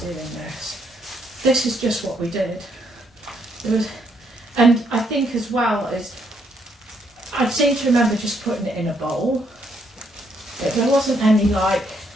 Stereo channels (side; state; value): both; normal; correlation 0.73